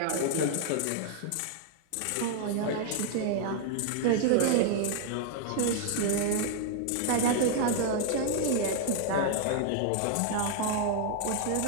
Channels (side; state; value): both; different; correlation 0.00